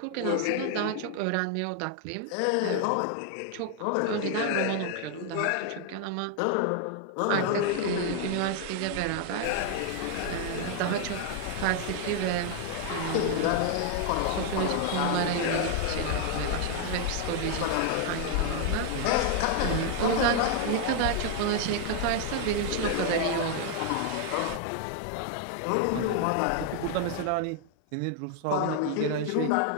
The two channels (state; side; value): different; both; correlation 0.00